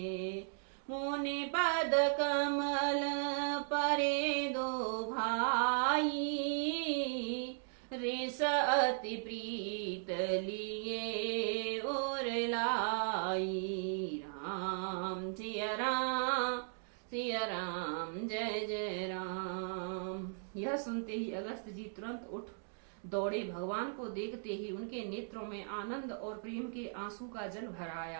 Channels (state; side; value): silent; left; digital silence